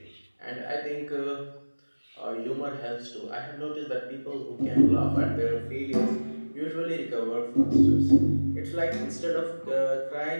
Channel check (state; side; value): inverted; both; correlation -1.00